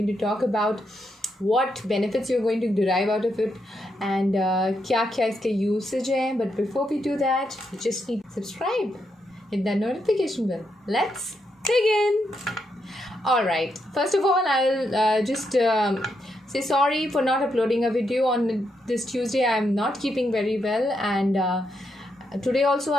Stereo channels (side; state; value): both; normal; correlation 0.81